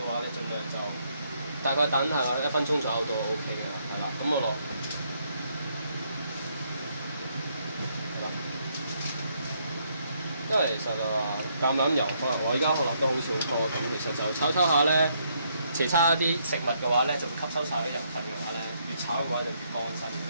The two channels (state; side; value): inverted; both; correlation -0.73